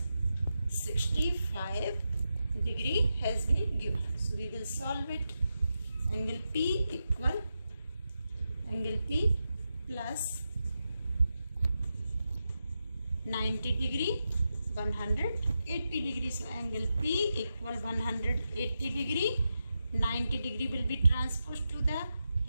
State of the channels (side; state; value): both; inverted; correlation -0.88